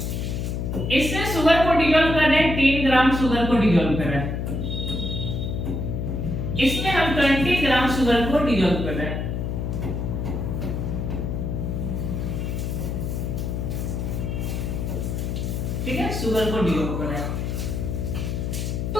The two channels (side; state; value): left; noise; hum, 2 dB below the sound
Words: इसमें शुगर को डिसॉल्व कर रहे हैं, 3 ग्राम शुगर को डिसॉल्व कर रहे हैं, इसमें हम 20 ग्राम शुगर को डिसॉल्व कर रहे हैं। ठीक है, शुगर को डिसॉल्व कर रहे हैं, तो